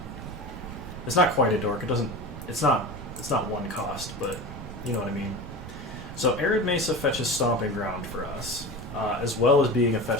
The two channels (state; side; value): noise; right; rumble, 12 dB below the sound